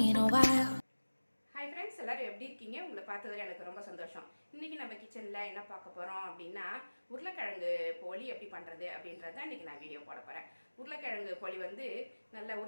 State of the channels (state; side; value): inverted; both; correlation -1.00